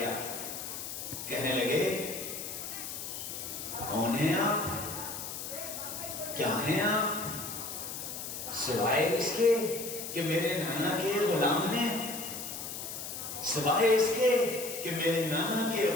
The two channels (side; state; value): left; noise; hiss, 7 dB below the sound